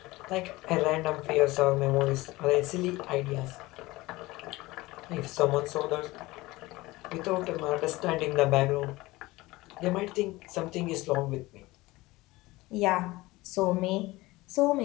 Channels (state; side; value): quieter; right; 20.1 dB